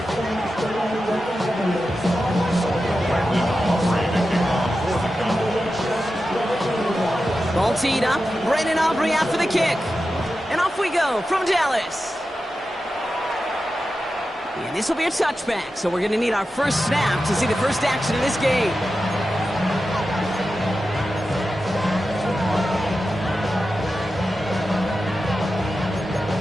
Ball teed up, Brandon Aubrey out for the kick. And off we go from Dallas. And this will be a touchback, so we're going to need our first snap to see the first action of this game.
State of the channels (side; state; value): both; normal; correlation 0.92